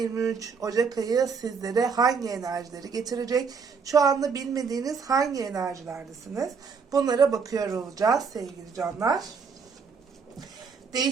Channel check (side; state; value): left; quieter; 5.6 dB